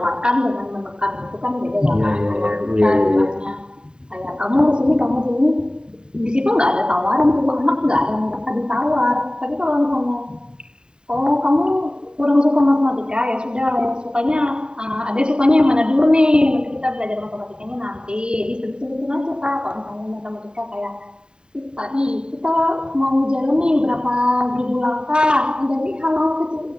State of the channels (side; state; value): left; late; 0.048 ms